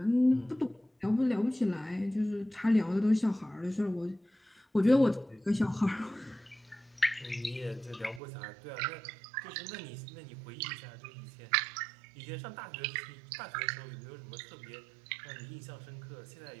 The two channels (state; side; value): drops out; left; at 8.2 s